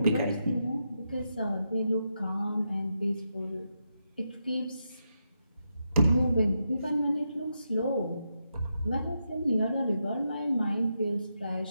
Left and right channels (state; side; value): inverted; both; correlation -0.84